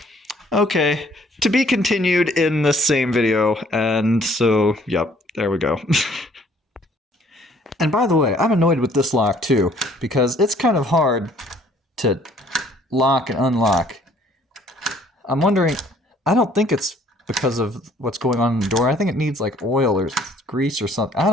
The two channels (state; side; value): normal; both; correlation 0.59